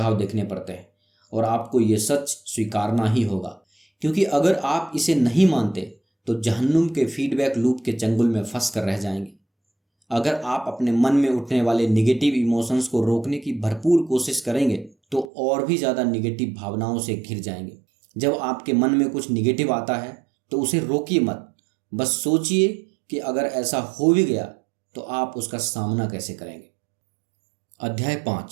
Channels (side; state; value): left; drops out; at 15.2 s